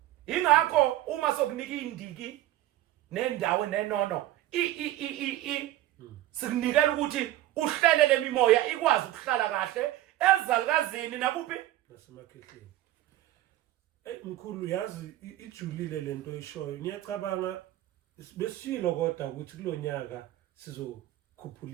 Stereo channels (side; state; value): left; quieter; 14.7 dB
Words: ingakho uma sokunika indiki nendawo nenono sikunikela ukuthi uhlele lemimoya ikwazi ukuhlala kahle ezalukazini nakuphi nasemakhehleni mkhulu yazi ijulile lento oyishoyo ngiyacabanga besilo kodwa ukuthi kulonyaka